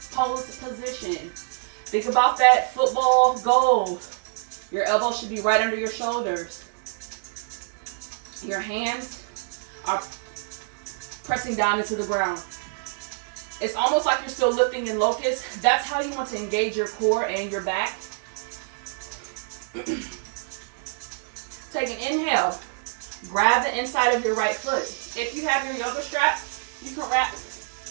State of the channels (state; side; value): silent; left; digital silence